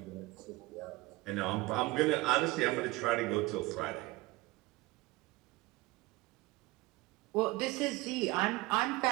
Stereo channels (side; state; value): left; quieter; 20.8 dB